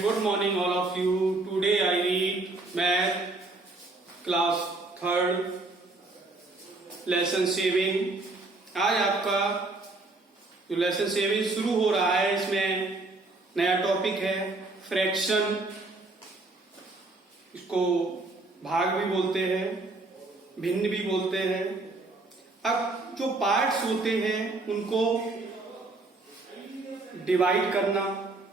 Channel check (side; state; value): left; quieter; 3.2 dB